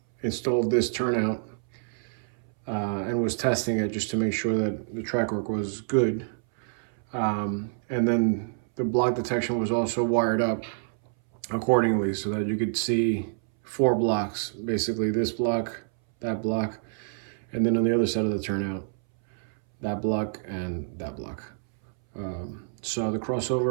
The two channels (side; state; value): left; silent; 60 dB below the other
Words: installed this turnout and was testing it just to make sure that the track work was good. And then the block detection was also wired up accordingly so that you could see 4 blocks, basically this block, that block, and then on the other side of the turnout, that block and that block. So the